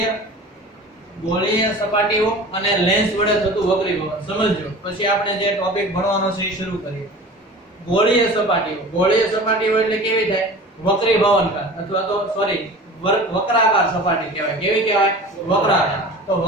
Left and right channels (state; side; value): normal; both; correlation 0.38